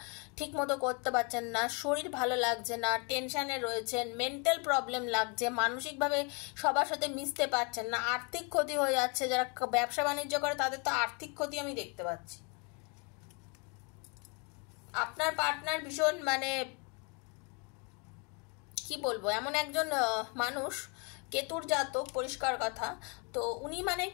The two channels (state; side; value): quieter; right; 33.4 dB